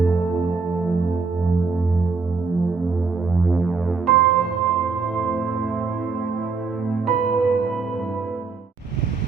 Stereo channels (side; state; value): left; quieter; 4.6 dB